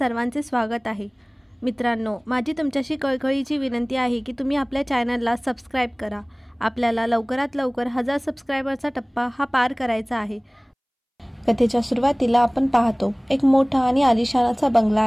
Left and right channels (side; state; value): both; identical; correlation 1.00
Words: स्वागत आहे. मित्रांनो, माझी तुमच्याशी कळकळीची विनंती आहे की तुम्ही आपल्या चॅनलला सबस्क्राईब करा. आपल्याला लवकरात लवकर 1000 सबस्क्रायबरचा टप्पा हा पार करायचा आहे. कथेच्या सुरुवातीला आपण पाहतो एक मोठा आणि आलिशान असा बंगला